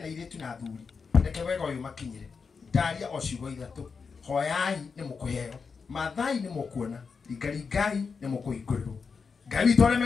airĩtu na athuri reke wega ũyũ makinyĩre ndaria o ciugo ithatũ hoyai nĩ mũkũheo mathai nĩ mũkuona ringai nĩ mũkũhingũrĩrwo Ngai witũ arĩa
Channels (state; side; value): quieter; right; 5.3 dB